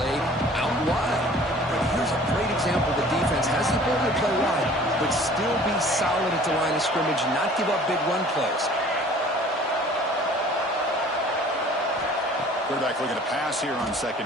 out wide. But here's a great example. The defense has the ability to play wide, but still be solid at the line of scrimmage, not give up big run plays. Quarterback looking to pass here on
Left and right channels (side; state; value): both; normal; correlation 0.50